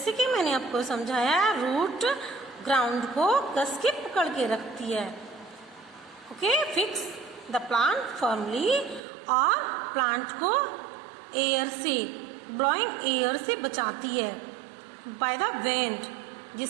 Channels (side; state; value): left; drops out; at 9.0 s